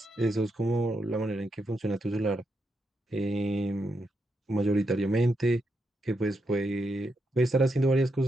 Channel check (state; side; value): normal; both; correlation 0.82